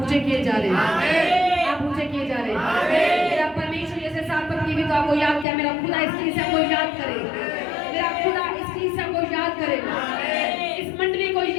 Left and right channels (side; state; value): right; drops out; at 5.5 s